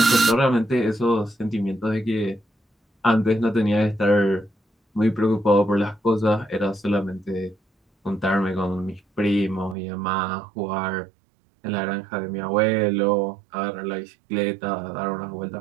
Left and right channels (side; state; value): left; drops out; at 9.8 s